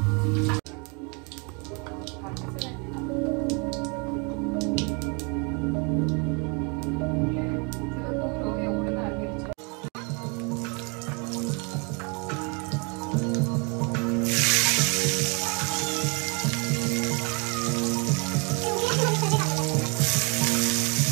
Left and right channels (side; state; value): left; quieter; 33.2 dB